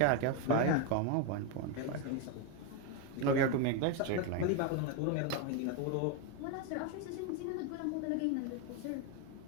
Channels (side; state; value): both; different; correlation 0.02